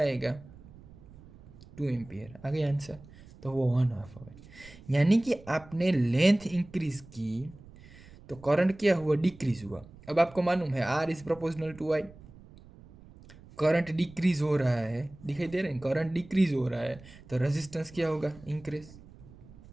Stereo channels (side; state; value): right; noise; rumble, 21 dB below the sound